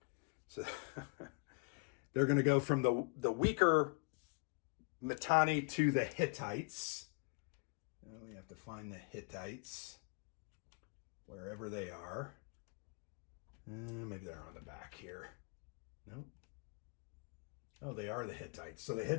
So they're going to go from the weaker Mitanni to the Hittites. We have to find the Hittites wherever they are. Maybe they're on the back here. Nope. Oh, they are the Hittites. So the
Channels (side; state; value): right; quieter; 34.3 dB